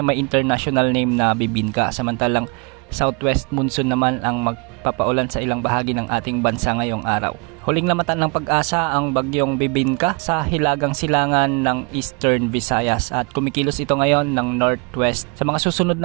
international name na Bibinka. Samantalang southwest monsoon naman ang magpapaulan sa ilang bahagi ng ating bansa ngayong araw. Huling lamatan ng pag-asa ang bagyong Bibinka sa hilagang silangan ng Eastern Visayas at kumikilos ito ngayon ng northwest. Sa mga susunod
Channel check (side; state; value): left; quieter; 32.4 dB